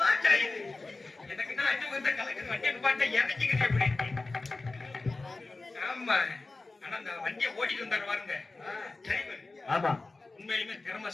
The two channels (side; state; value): right; quieter; 3.4 dB